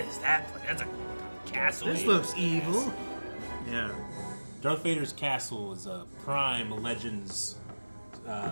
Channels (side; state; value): both; inverted; correlation -1.00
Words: is that place? That's a castle. This looks evil. Yeah. Darth Vader's castle is a prime Legends